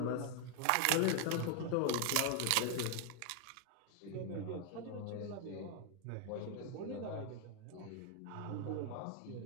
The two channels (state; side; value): different; both; correlation 0.01